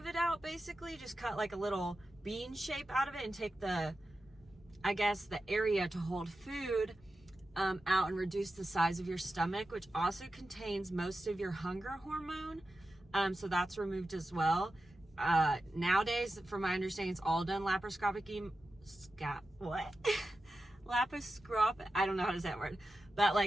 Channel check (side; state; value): both; normal; correlation 0.92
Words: it out, basically. Just cut like a little bean shape out of it and take the, I guess, the area to hold food out and reduce the size of your stomach, which also contains most of your hunger hormone. So that's removed as well. Nowadays, from my understanding, it's all done laparoscopically. Laparoscopic, I don't know how to say that word, but